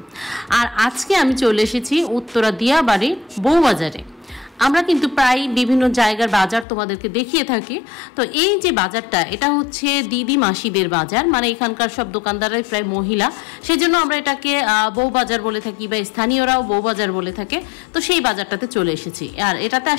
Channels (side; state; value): right; drops out; at 6.7 s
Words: আর আজকে আমি চলে এসেছি উত্তরা দিয়াবাড়ির বউবাজারে। আমরা কিন্তু প্রায় বিভিন্ন জায়গার বাজার তোমাদেরকে দেখিয়ে থাকি। তো এই যে বাজারটা, এটা হচ্ছে দিদি মাসিদের বাজার, মানে এখানকার সব দোকানদাররাই প্রায় মহিলা, সেজন্য আমরা এটাকে বউবাজার বলে থাকি বা স্থানীয়রাও বউবাজার বলে থাকে। তো সেই বাজারটাতে চলে এসেছি। আর এটাতে